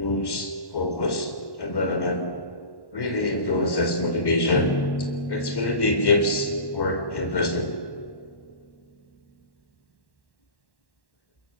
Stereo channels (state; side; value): late; right; 1.1 ms